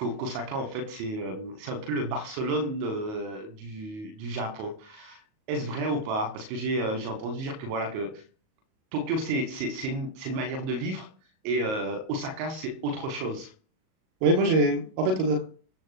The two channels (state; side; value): late; left; 37 ms